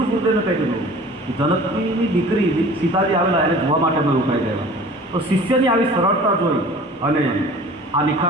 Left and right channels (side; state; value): both; normal; correlation 0.44